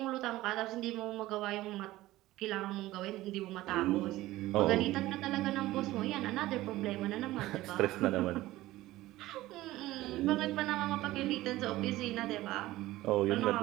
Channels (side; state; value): left; quieter; 16.9 dB